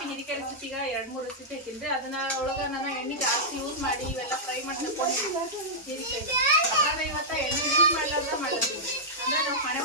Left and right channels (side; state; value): both; normal; correlation -0.10